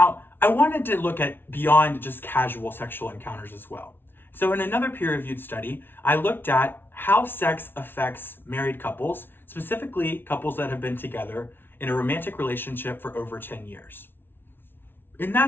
I wanted to look at beyond just casual sexual encounters as well. So in another peer-reviewed study, I looked at how sex affects married couples, specifically couples that have been together in a romantic relationship for over 10 years. In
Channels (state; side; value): late; right; 0.10 ms